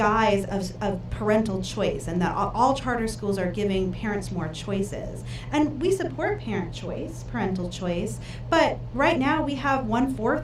of parental choice, and that all charter schools are giving parents more choices. And we support parent choice, parental choice, but right now we have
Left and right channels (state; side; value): identical; both; correlation 1.00